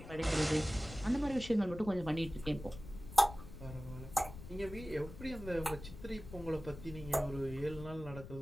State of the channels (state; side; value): noise; left; rumble, 13 dB below the sound